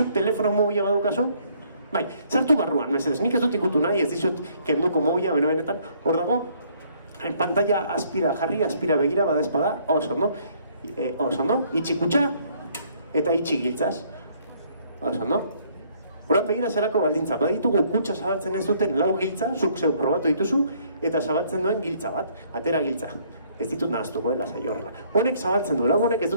telefono mobila badaukazu? Bai, sartu barruan, mesedez, nik ez dut ikutu nahi, ez dizut kenduko mobila, benetan, hor dago, pantalla aspira begira, bada espada, oso ondo, itxi kutsa, eta itxi giltzaz, oso ondo. Horren begira zerako baldintza, baditugu kutsa zabaltzen ez duten 4 giltza, zuk zeu probatu dituzu, eta zabaltzen duen giltza bat, atera giltza. Ez ditut nahaztuko, lasai horrela. Honek zabaltzen du, honek ez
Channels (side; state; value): both; inverted; correlation -0.64